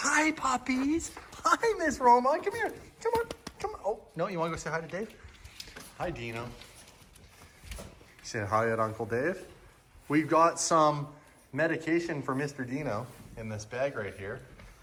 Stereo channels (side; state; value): both; identical; correlation 1.00